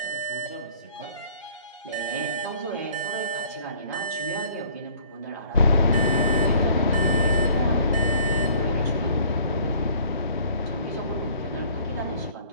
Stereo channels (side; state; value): both; inverted; correlation -0.56